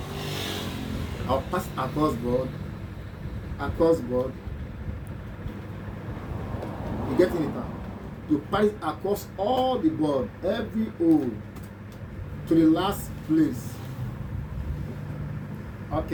I'll pass it across board. You getting it now? You pass it across all the board, every hole, to the last place.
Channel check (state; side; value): identical; both; correlation 1.00